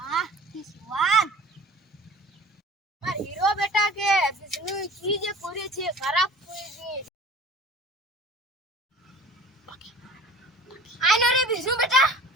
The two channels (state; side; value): normal; both; correlation 0.44